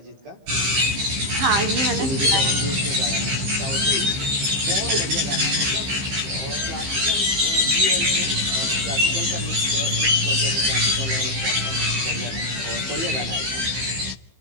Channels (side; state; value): left; late; 15 ms